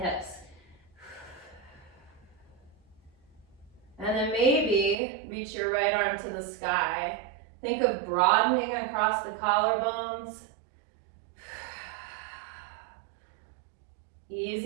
And then maybe reach your right arm to the sky. Think of broadening across the collarbones.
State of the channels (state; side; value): drops out; left; at 5.0 s